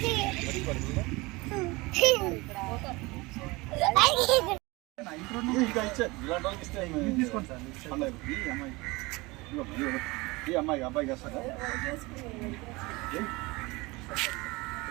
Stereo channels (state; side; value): quieter; left; 23.3 dB